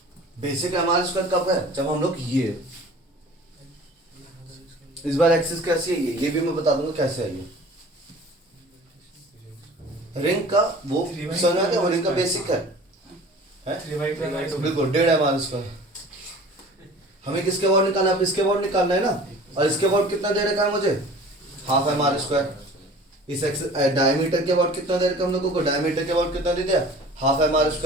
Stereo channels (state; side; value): normal; both; correlation 0.44